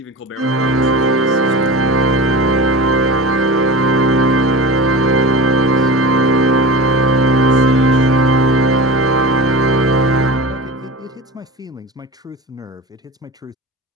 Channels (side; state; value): both; normal; correlation 0.31